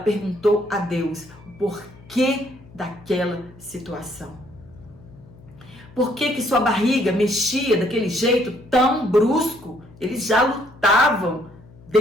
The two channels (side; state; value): left; noise; hum, 22 dB below the sound